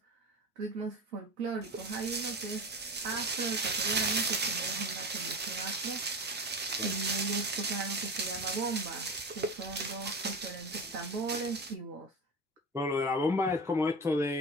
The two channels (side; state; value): both; normal; correlation 0.27